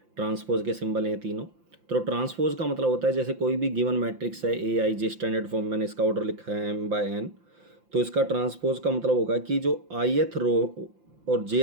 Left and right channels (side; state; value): left; late; 5.8 ms